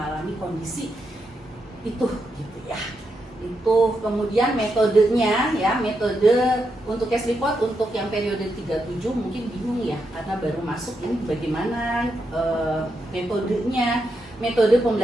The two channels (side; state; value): both; normal; correlation 0.83